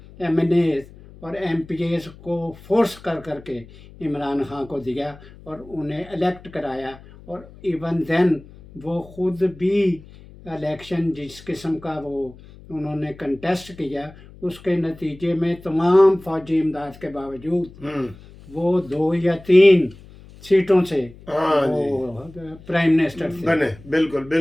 MNAs और MPAs को फोर्स करके इमरान खान को दिया और उन्हें इलेक्ट कराया। और इवन देन वो ख़ुद भी इलेक्शन जिस किस्म का वो उन्होंने कंटेस्ट किया, उसके नतीजे में तमाम फौजी इमदाद के बावजूद वो 2 या 3 सीटों से वो प्राइम मिनिस्टर थे बने। बिल्कुल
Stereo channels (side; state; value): left; noise; hum, 21 dB below the sound